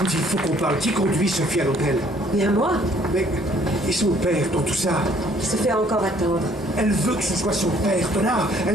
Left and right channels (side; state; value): both; normal; correlation 0.61